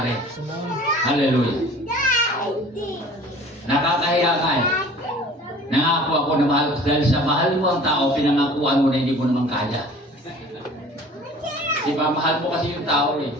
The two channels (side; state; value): both; normal; correlation 0.46